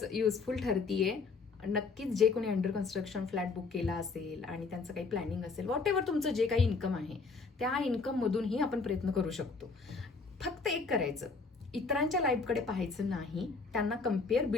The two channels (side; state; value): right; quieter; 4.4 dB